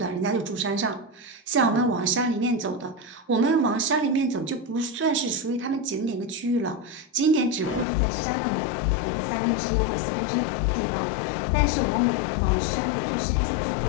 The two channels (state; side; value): drops out; right; at 7.9 s